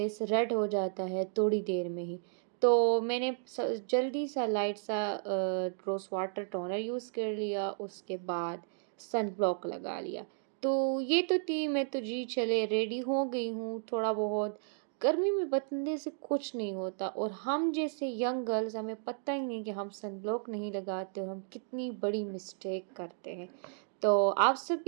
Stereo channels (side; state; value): left; silent; digital silence